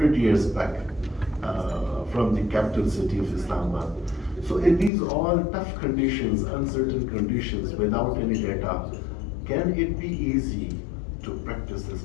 years back from the capital city of Islamabad. So in these all tough conditions, uncertain conditions, without any data, can it be easy to practice this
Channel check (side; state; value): right; drops out; at 4.9 s